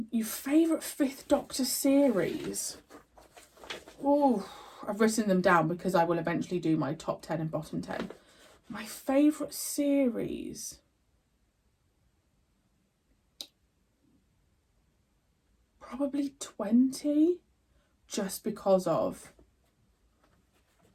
favourite Fifth Doctor series? Oh, I've written them down because I will eventually do my top 10 and bottom 10. My favourite series? Probably 20, just because of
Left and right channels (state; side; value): identical; both; correlation 1.00